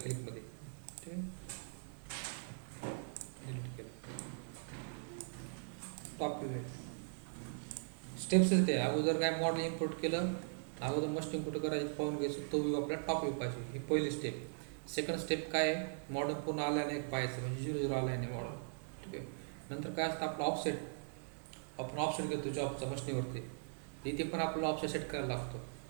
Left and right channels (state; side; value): silent; left; digital silence